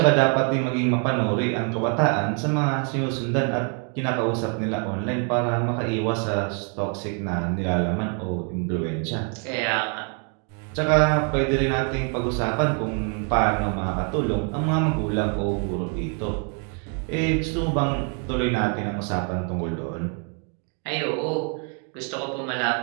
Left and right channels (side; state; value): left; quieter; 40.0 dB